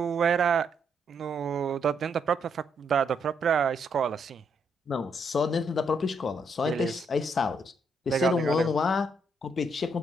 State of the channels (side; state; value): both; normal; correlation 0.75